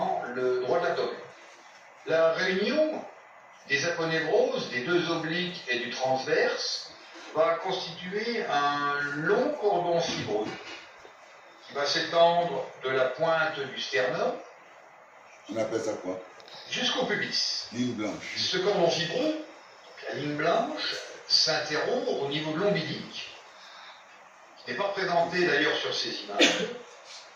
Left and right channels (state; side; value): identical; both; correlation 1.00